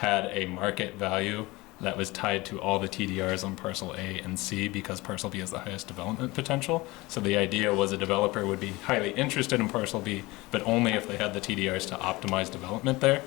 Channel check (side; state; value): right; quieter; 21.6 dB